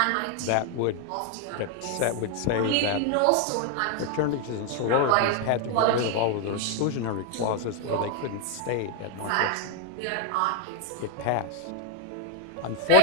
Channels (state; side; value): different; both; correlation 0.01